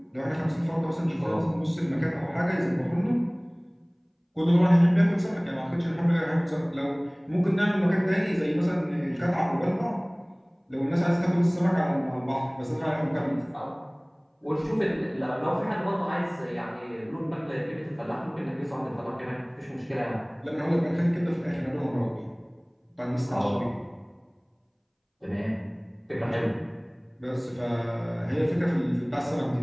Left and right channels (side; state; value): both; identical; correlation 1.00